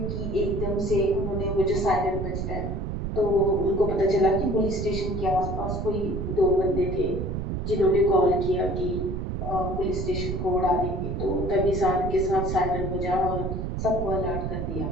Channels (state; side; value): noise; right; rumble, 3 dB below the sound